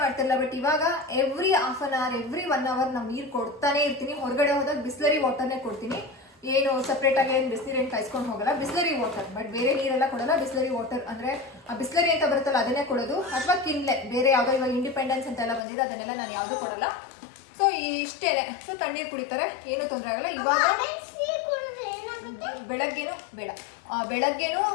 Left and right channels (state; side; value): drops out; right; at 15.6 s